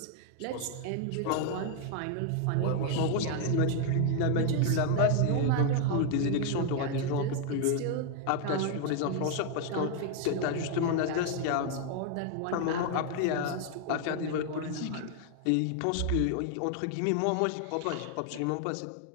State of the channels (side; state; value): both; different; correlation 0.00